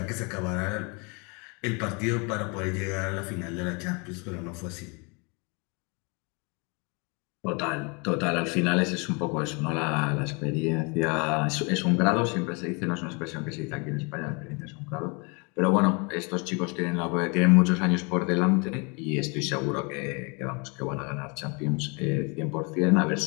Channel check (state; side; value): quieter; right; 31.7 dB